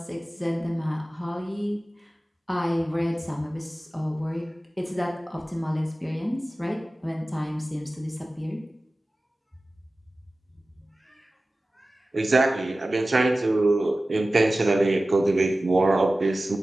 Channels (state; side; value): normal; both; correlation 0.96